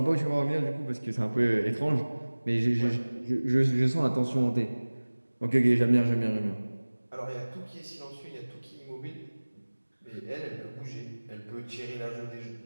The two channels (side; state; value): both; inverted; correlation -1.00